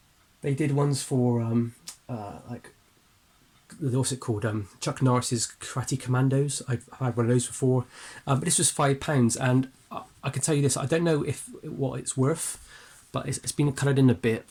They did ones for like, what's it called? Chuck Norris's Karate Commandos. I've had one of those before, but this was £5, and I can tell you this: I don't know what it's worth, but it's been coloured in a bit.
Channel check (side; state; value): both; identical; correlation 1.00